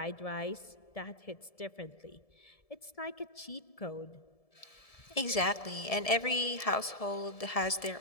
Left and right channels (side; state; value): right; late; 1.7 ms